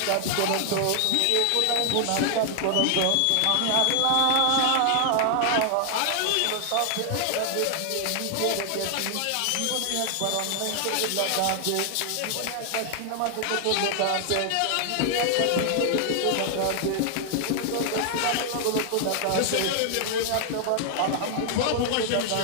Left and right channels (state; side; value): different; both; correlation 0.00